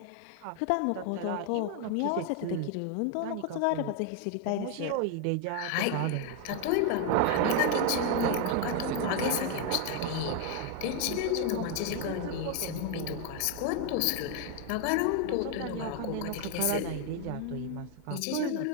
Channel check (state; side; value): different; both; correlation 0.01